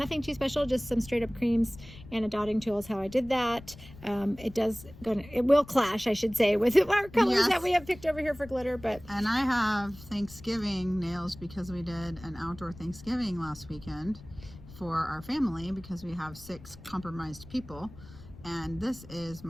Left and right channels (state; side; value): noise; left; rumble, 18 dB below the sound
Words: too special, just some straight up creams and a dotting tool is how I did that. It will clash, I should say, with our colors that we have picked over here for glitter. And I have Thanksgiving nails because we did an outdoor Thanksgiving last weekend for our family because we have 6 compromised people. And this is